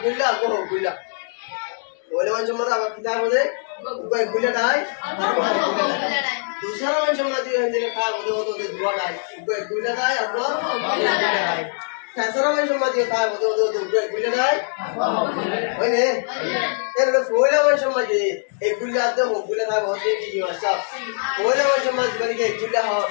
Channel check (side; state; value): right; silent; digital silence